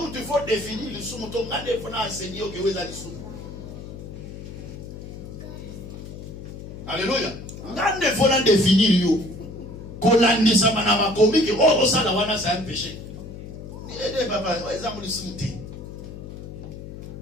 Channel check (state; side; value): noise; left; hum, 11 dB below the sound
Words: tu faut définir le soumté. On a enseigné que vous avez le soumté. Alléluia. On a définir yo. Qu'on a dit ça, on a commis que oh, ça, c'est un péché. Il papa, oh, ils ont le soumté.